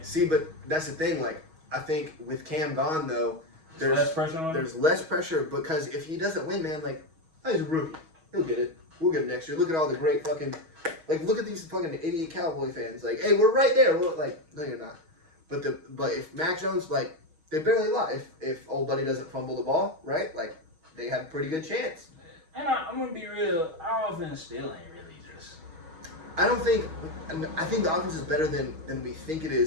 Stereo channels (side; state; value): left; late; 6.3 ms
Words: See, but that's the thing. I think with Cam gone, though, there's less pressure on him? There's less pressure because if he doesn't win, man, he's a rookie. He'll get it. We'll get it next year. Look at all the great fucking, look at these fucking idiot Cowboy fans. Hey, we're right there. No, you're not. But if Mac Jones, they barely lie. If old buddy doesn't fumble the ball, right? They have a pretty good chance. And I'm gonna be real. Our offense still ain't really just. I think the offense is better than we think it